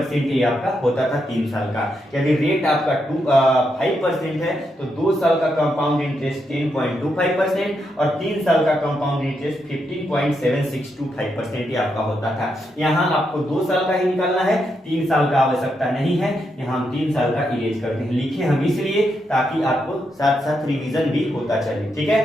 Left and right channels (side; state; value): both; normal; correlation 0.82